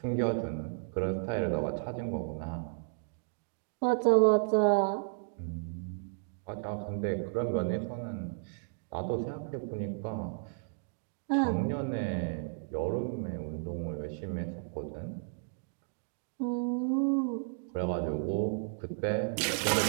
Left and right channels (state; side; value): silent; left; digital silence